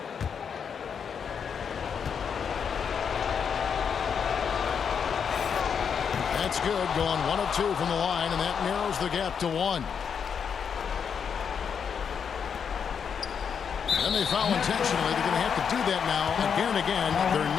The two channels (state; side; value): quieter; right; 7.0 dB